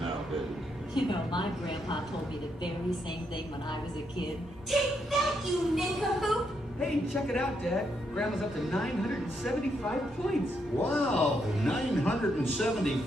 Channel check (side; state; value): both; normal; correlation 0.78